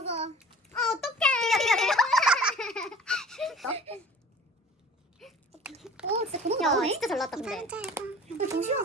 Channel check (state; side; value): normal; both; correlation 0.45